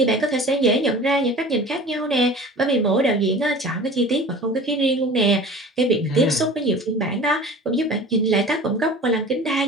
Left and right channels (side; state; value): both; normal; correlation 0.40